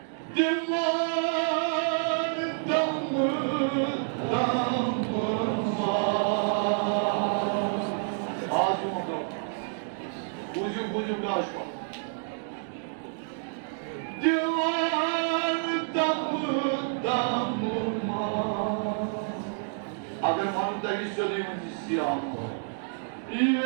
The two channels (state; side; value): silent; left; digital silence